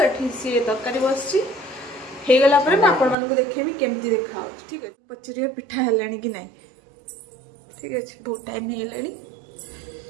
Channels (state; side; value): drops out; left; at 3.2 s